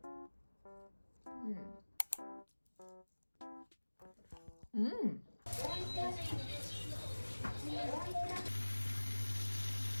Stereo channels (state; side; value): inverted; both; correlation -1.00